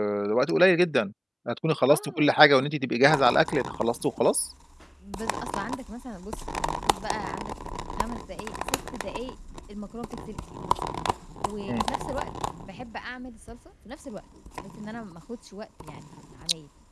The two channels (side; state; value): both; identical; correlation 1.00